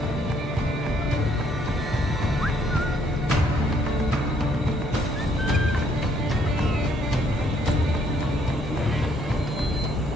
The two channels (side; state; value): both; normal; correlation 0.67